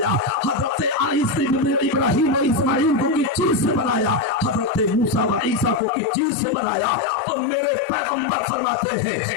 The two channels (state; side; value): drops out; right; at 5.9 s